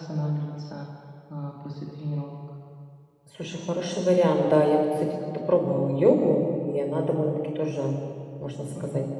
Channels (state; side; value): identical; both; correlation 1.00